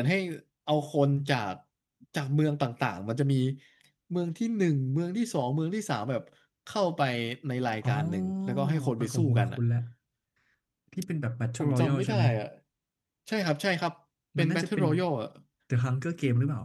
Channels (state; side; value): identical; both; correlation 1.00